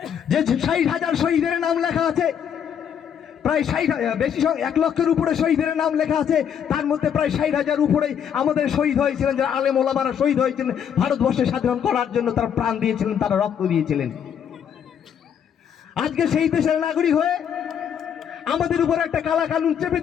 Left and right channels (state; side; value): quieter; right; 8.4 dB